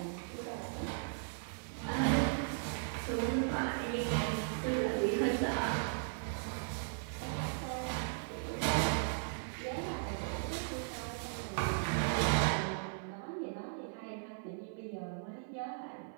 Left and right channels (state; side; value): silent; left; 53 dB below the other